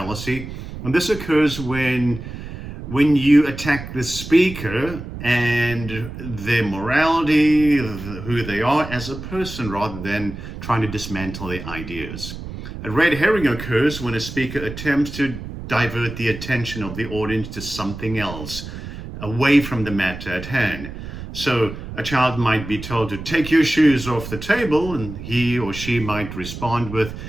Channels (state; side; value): noise; right; rumble, 10 dB below the sound